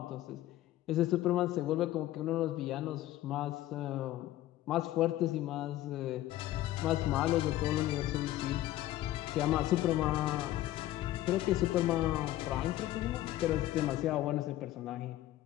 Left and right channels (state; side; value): quieter; right; 14.7 dB